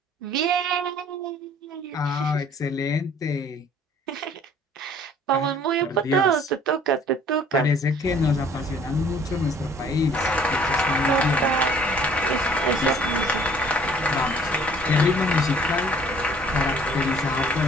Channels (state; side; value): normal; both; correlation 0.55